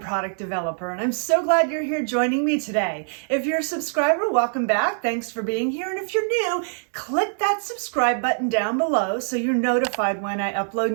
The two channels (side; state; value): left; silent; digital silence